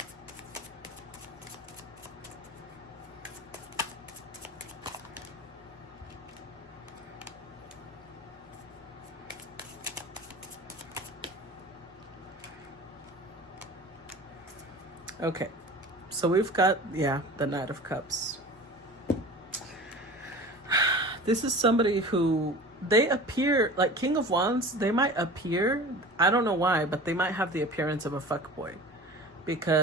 Okay, so we've got, yeah, the Knight of Cups. This is somebody who, they appear, like King of Wands, they might appear, I don't know why, but they might have the appearance of a fuckboy.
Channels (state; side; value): normal; both; correlation 0.38